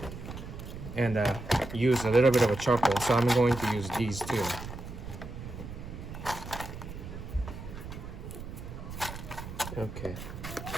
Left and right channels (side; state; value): right; noise; rumble, 10 dB below the sound